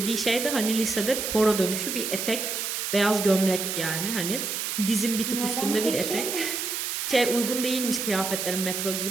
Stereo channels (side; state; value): right; noise; hiss, 2 dB below the sound